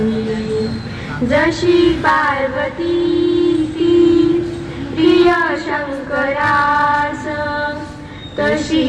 जशी पार्वती ती प्रिय शंकरास, तशी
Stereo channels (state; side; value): identical; both; correlation 1.00